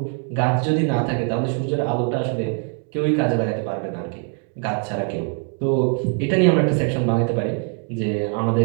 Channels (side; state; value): left; quieter; 39.6 dB